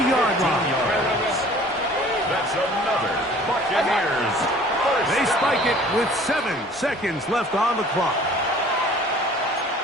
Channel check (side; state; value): both; normal; correlation 0.50